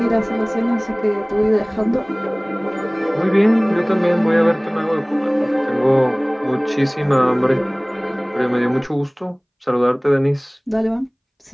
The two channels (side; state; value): both; identical; correlation 1.00